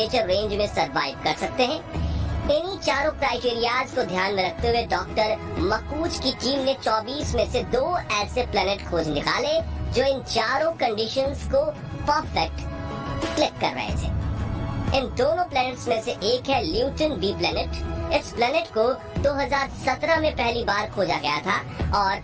रेंज में सरवाइव कर सकते हैं। इन्हीं चारों क्राइटेरियाज को ध्यान में रखते हुए डॉक्टर मकूज की टीम ने 24 में से 2 ऐसे प्लेनेट खोज निकाले जो इन चारों कंडीशंस को परफेक्ट क्लिक कर रहे थे। इन दोनों प्लैनेट्स में से एक है ल्यूटन बी प्लैनेट। इस प्लैनेट को 2017 में पहली बार खोजा गया था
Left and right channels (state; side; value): identical; both; correlation 1.00